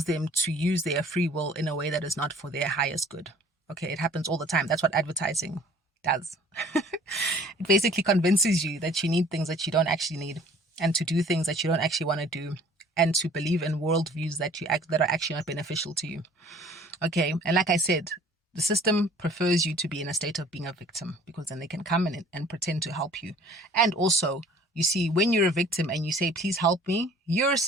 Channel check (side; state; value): both; normal; correlation 0.52